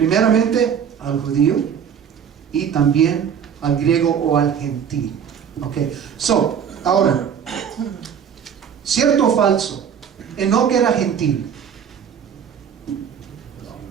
al judío y también al griego o al gentil. Ahora, ¿cierto o falso? Enoc era gentil.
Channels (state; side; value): quieter; left; 7.9 dB